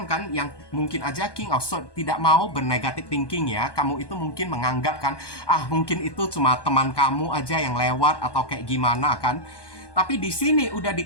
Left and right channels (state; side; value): late; right; 1.2 ms